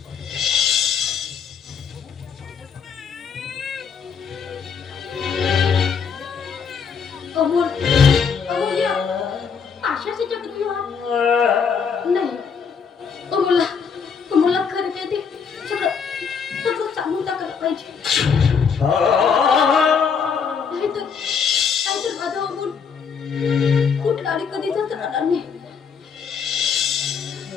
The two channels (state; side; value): quieter; right; 6.3 dB